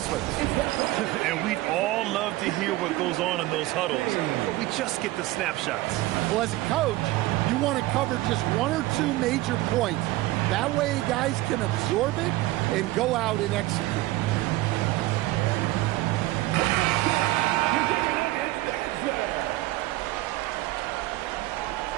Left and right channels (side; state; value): left; quieter; 18.0 dB